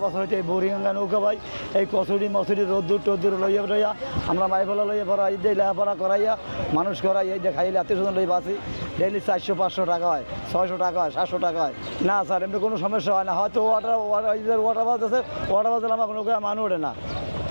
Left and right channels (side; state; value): both; inverted; correlation -1.00